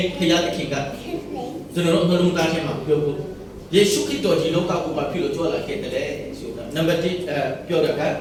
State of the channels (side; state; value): both; identical; correlation 1.00